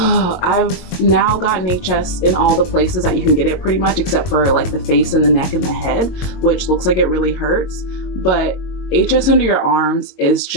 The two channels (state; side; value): late; right; 22 ms